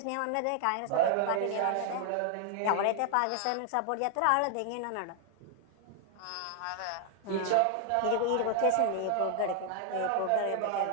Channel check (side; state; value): both; different; correlation 0.00